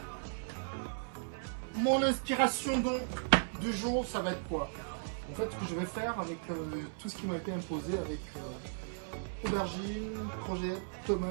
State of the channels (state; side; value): silent; left; 54 dB below the other